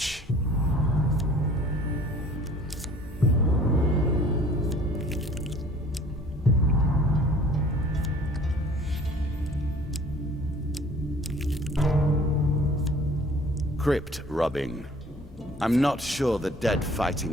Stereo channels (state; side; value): normal; both; correlation 0.51